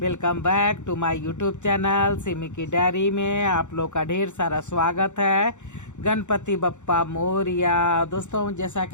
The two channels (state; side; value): late; right; 0.84 ms